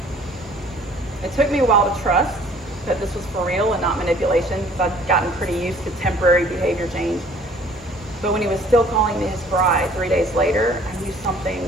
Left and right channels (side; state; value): both; normal; correlation 0.54